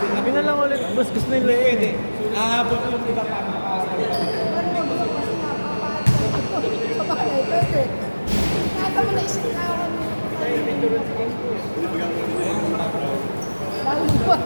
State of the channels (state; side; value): inverted; both; correlation -1.00